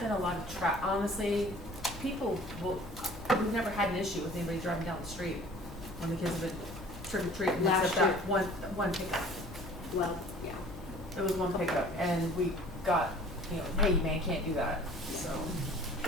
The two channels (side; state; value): left; noise; hum, 17 dB below the sound